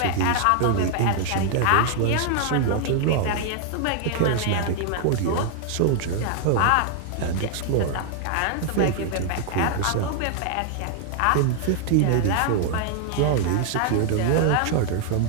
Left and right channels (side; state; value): both; different; correlation 0.00